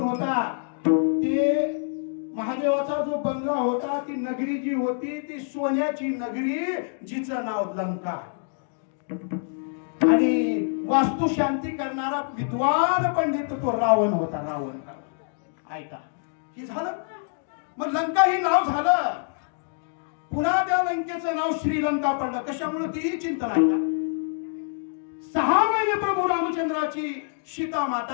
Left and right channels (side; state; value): right; silent; 61 dB below the other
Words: होता? ते महादेवाचा जो बंगला होता ती नगरी जी होती ती सोन्याची नगरी जिचं नाव लंका. आणि वास्तू शांती करणारा विद्वान पंडित तो रावण होता. रावण. ऐका हे झालं. मग लंका ही नाव झालं. पुन्हा त्या लंकेचं नाव श्रीलंका पडलं. कशामुळे तीही चिंतन आहे का. 6 महिने प्रभू रामचंद्राची सीता